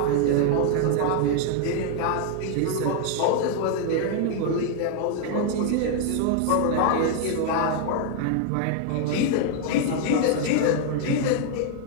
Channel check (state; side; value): different; both; correlation 0.00